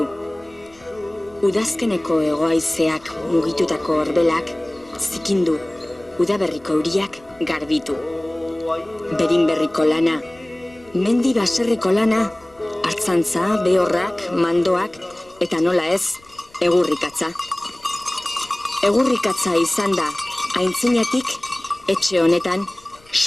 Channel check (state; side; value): noise; left; rumble, 28 dB below the sound